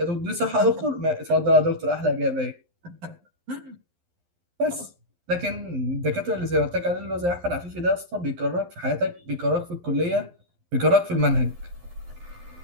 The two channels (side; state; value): left; late; 11 ms